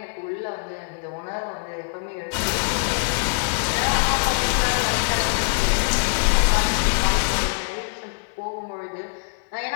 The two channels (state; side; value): silent; right; 63 dB below the other